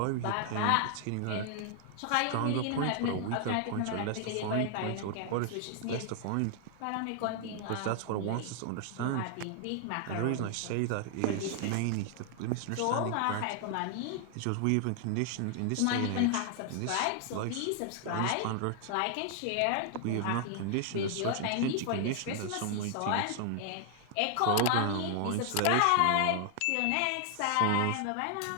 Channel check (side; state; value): both; different; correlation 0.00